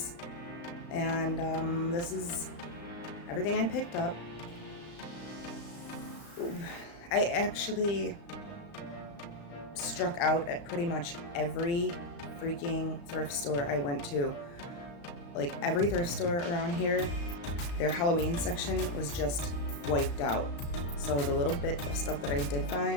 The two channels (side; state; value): right; late; 35 ms